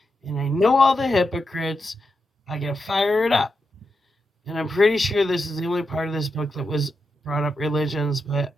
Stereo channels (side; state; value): both; normal; correlation 0.86